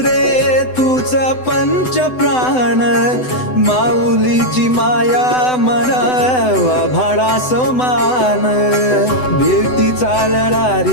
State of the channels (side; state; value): right; late; 7.9 ms